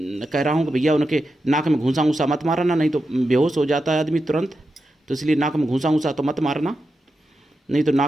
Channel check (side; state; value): both; normal; correlation 0.89